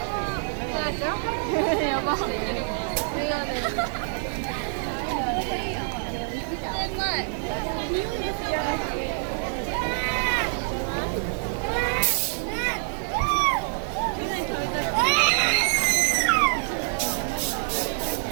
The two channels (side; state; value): left; silent; digital silence